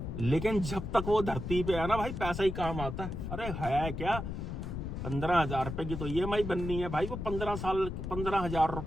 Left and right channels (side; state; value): left; noise; rumble, 5 dB below the sound